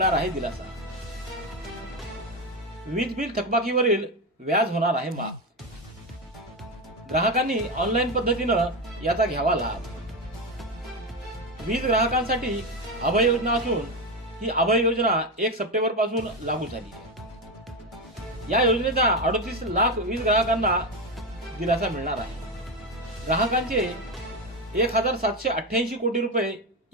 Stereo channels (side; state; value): both; normal; correlation 0.13